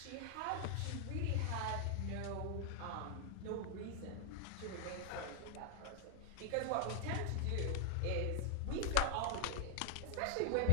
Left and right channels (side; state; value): both; different; correlation 0.00